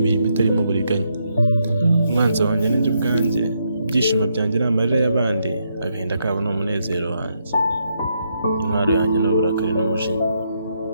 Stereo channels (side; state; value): both; inverted; correlation -0.78